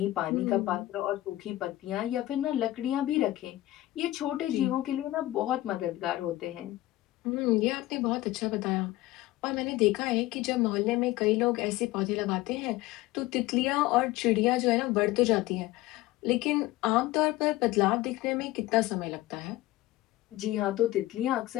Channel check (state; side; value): quieter; right; 16.8 dB